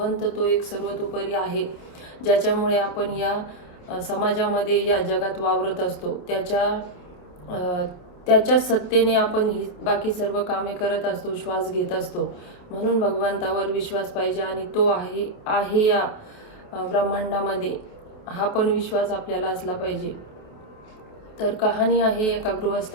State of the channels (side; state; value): right; late; 28 ms